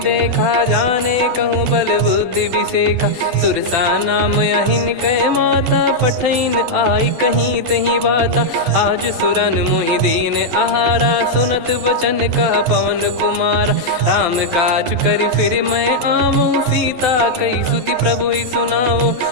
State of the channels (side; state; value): left; late; 12 ms